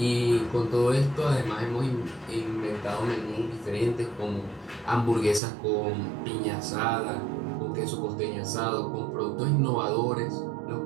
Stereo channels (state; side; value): drops out; left; at 5.4 s